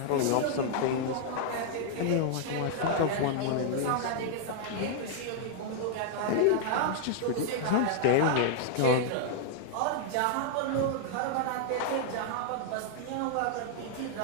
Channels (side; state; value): both; different; correlation -0.01